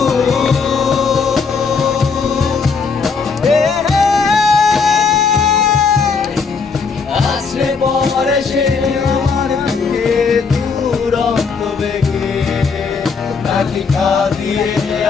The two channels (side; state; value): right; quieter; 5.1 dB